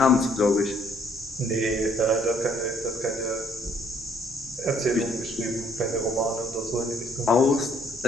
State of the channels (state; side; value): normal; both; correlation 0.64